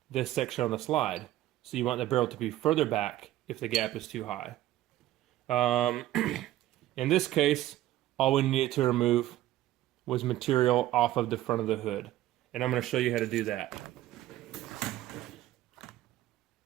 this section on the slide. So you want the barrel to be further back if the gap is too high. In this case, all we needed to remove was material off of the front of the hood. And I'm going to show you how to do that.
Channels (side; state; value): left; quieter; 14.5 dB